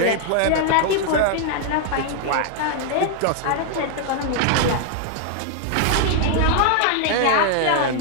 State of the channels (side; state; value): both; different; correlation 0.00